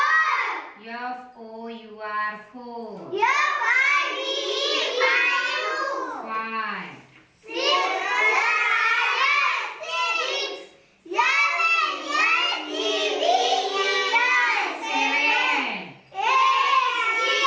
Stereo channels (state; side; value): identical; both; correlation 1.00